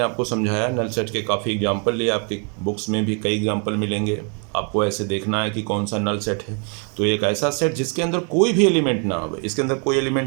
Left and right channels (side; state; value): left; quieter; 38.5 dB